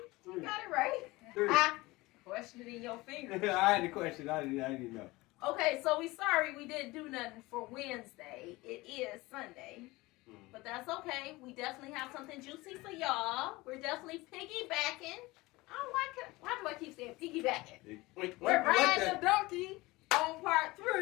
3. You got it right. 3. Question it in your fingers. I had the question. I didn't know. Okay, so we sorry we didn't do nothing for Wednesday. It is Sunday. But that's okay. We definitely have something juicy for y'all. We're definitely piggybacking. I don't like it. Why do I keep saying piggybacking? We're riding the donkey on part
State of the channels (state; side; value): quieter; right; 21.2 dB